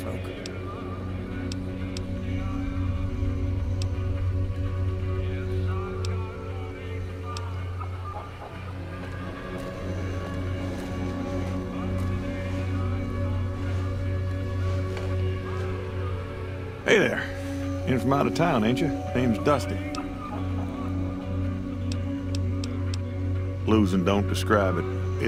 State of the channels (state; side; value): identical; both; correlation 1.00